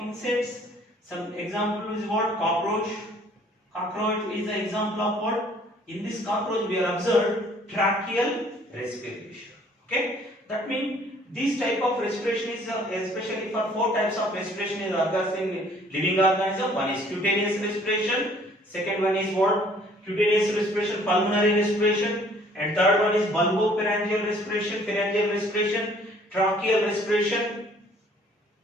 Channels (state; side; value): normal; both; correlation 0.57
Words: insects. Some example is what? Cockroach. Cockroach is an example of what? In this cockroach we have observed tracheal respiration. Okay, that means this type of respiration is especially for four types of respiration is occurs in living organism. One is cutaneous respiration. Second one is what? Cutaneous respiration, pulmonary respiration, and third one is bulbopharyngeal respiration, pharyngeal respiration, tracheal respiration.